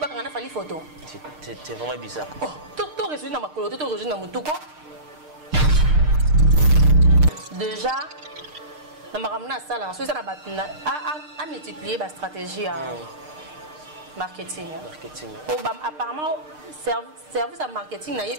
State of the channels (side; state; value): left; late; 6.6 ms